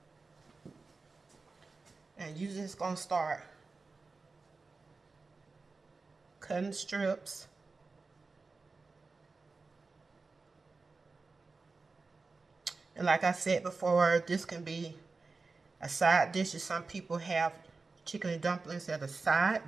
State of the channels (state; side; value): quieter; left; 4.0 dB